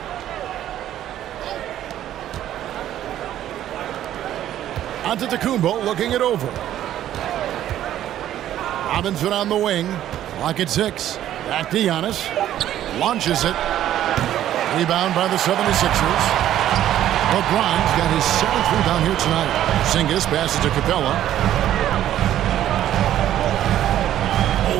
Antetokounmpo looking it over. Robinson on the wing. Clock at 6. Back to Giannis. Launches it. Rebound by the 76ers. LeBron's got his 7th rebound here tonight. Porzingis passes to Capella.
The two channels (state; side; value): quieter; left; 12.0 dB